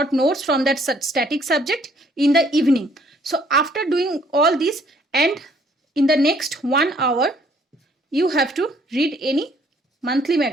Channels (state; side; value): normal; both; correlation 0.62